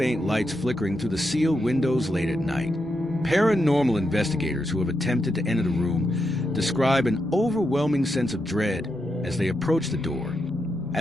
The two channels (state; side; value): normal; both; correlation 0.84